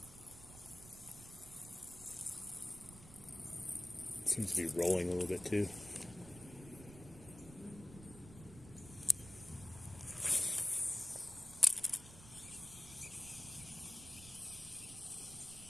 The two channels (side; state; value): right; noise; rumble, 17 dB below the sound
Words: It seems to be rolling a little bit too.